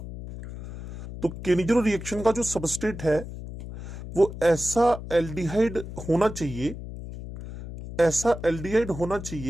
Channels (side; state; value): left; noise; hum, 10 dB below the sound